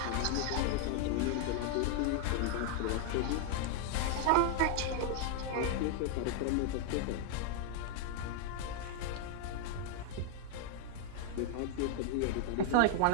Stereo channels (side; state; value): both; different; correlation 0.00